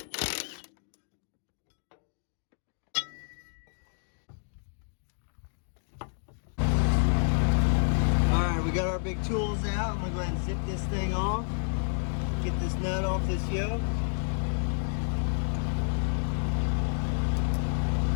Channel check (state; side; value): silent; right; digital silence